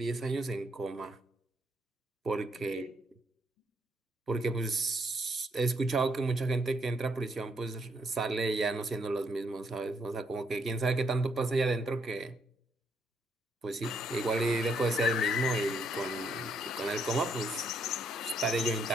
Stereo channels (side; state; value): both; normal; correlation 0.73